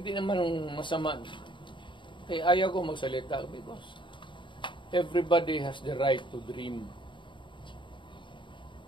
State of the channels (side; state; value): right; late; 0.23 ms